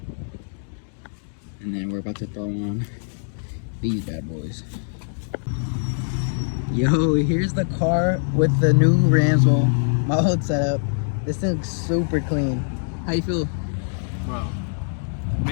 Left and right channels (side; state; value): right; silent; digital silence